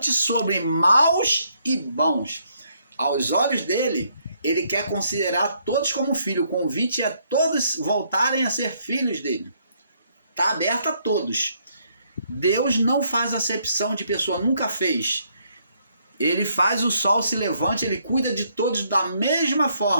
sobre maus e bons. Aos olhos dele, ele quer considerar todos como filho. O convite é todos voltarem a ser filhos dele. Está aberto a todos. Deus não faz acepção de pessoa, nunca fez. Ele faz o sol se levante, ele cuida de todos da mesma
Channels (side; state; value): both; inverted; correlation -0.71